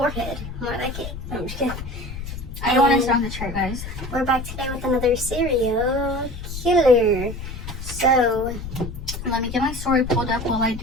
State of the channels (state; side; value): noise; left; rumble, 9 dB below the sound